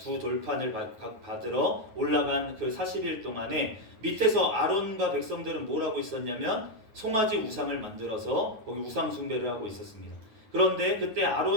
돌판을 받으러 올라간 그 40일 동안에 밑에서 아론과 백성들은 뭘 하고 있었냐면 송아지 우상을 만들어서 거기 우상 숭배를 하고 있었습니다. 그런데 그때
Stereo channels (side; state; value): left; late; 9.4 ms